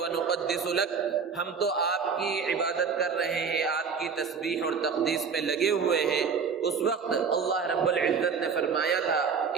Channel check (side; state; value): left; quieter; 5.9 dB